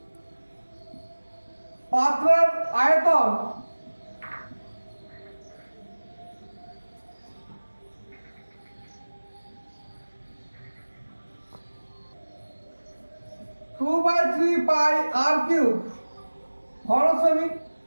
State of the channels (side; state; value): both; inverted; correlation -1.00